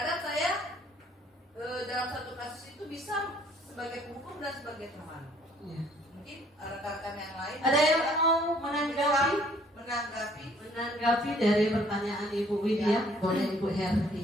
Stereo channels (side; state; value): both; normal; correlation 0.61